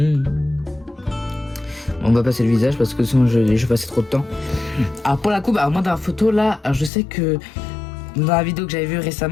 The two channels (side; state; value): right; drops out; at 6.9 s